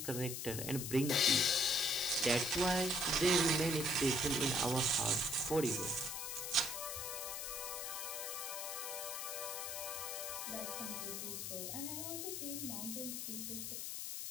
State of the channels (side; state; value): left; noise; hiss, 4 dB below the sound